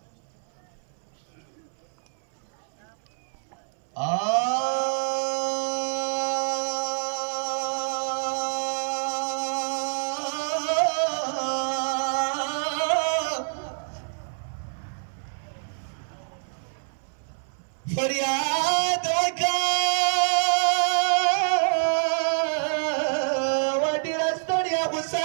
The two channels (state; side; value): silent; left; 60 dB below the other